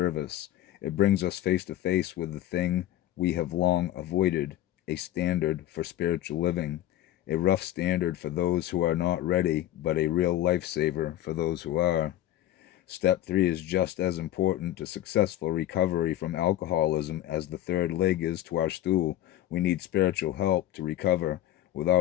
It brings us face to face with the thing we have long avoided, a standard for spiritual living, a rough standard for those who are not ready, but a real lifesaver for those who are. Step 3 is just as important to successful recovery from alcoholism as the third leg is to our stool. We need spiritual help to recover.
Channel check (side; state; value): right; quieter; 13.2 dB